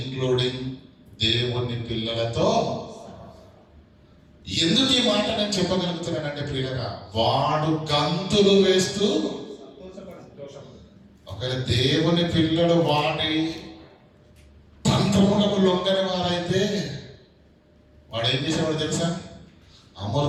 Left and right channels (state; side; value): identical; both; correlation 1.00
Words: దేవుని పిల్లలతో. ఎందుకు ఈ మాట నేను చెప్పగలుగుతున్నానంటే ప్రియులారా, వాడు గంతులు వేస్తూ, ఒకవేళ దేవుని పిల్లలు వాడి తంత్రములకు లొంగని వారైతే వాడు ఏం చేసేవాడు తెలుసా?